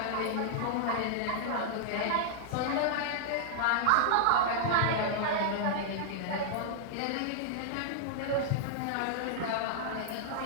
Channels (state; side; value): different; both; correlation -0.01